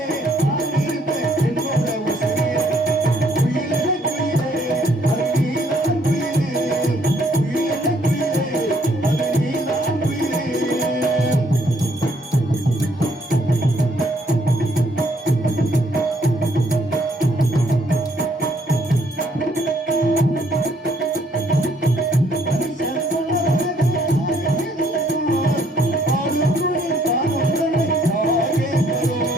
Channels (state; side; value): normal; both; correlation 0.66